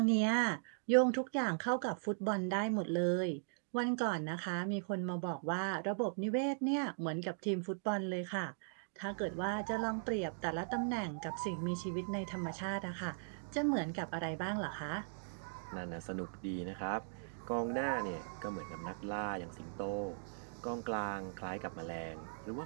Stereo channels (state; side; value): silent; left; digital silence